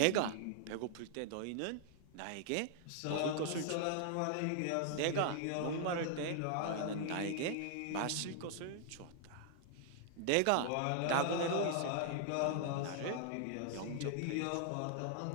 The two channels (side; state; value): both; different; correlation -0.01